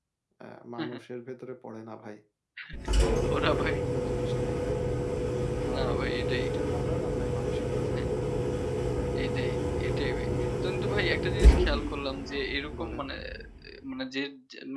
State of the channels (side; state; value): both; identical; correlation 1.00